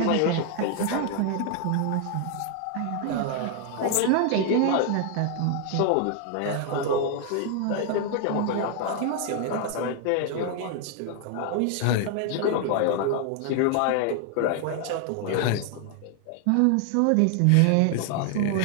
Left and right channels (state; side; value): different; both; correlation 0.00